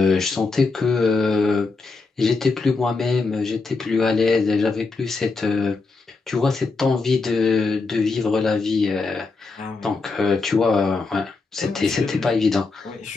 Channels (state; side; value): quieter; right; 4.0 dB